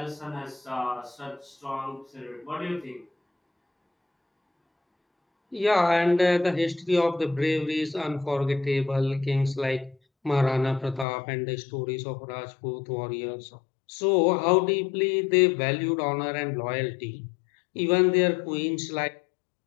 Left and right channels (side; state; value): right; drops out; at 11.1 s